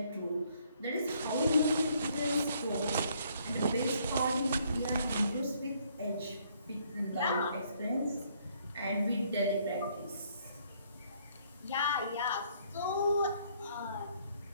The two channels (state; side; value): inverted; both; correlation -0.66